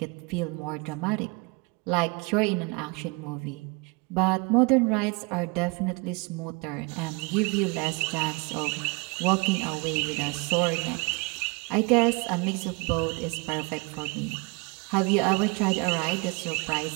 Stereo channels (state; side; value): quieter; left; 28.6 dB